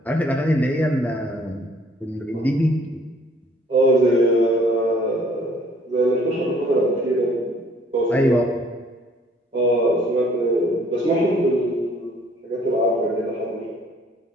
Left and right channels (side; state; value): both; normal; correlation 0.59